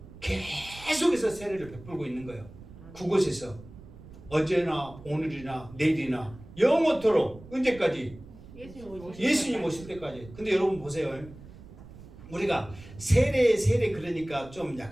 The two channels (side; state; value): right; noise; rumble, 18 dB below the sound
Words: 계속해서 세례를 베풀고 있는 거예요. 그곳에서 어제나 오늘이나 내일이나 영원토록 언제까지? 예수님 오실 때까지. 근데 여러분 보세요. 우리가 세례 그러니까 좀